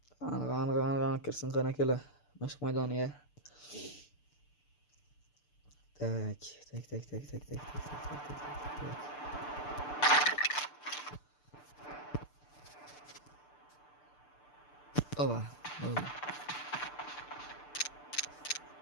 Qani kirsin qani akalar. Mashq maydoniga. Tak. Oba.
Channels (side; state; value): right; late; 6.8 ms